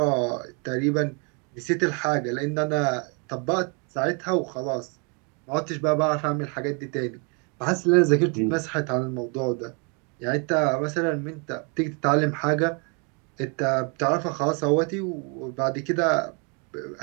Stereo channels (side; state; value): left; quieter; 35.0 dB